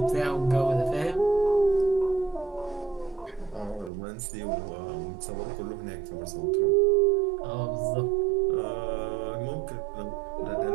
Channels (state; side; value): drops out; left; at 3.9 s